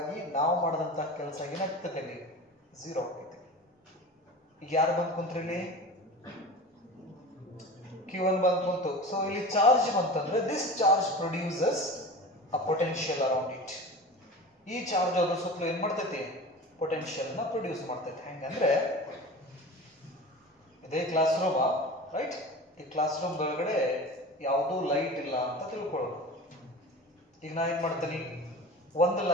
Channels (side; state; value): both; normal; correlation 0.34